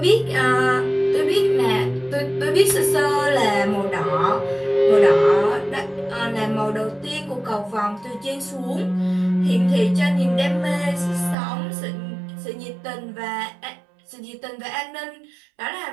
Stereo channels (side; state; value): left; drops out; at 11.4 s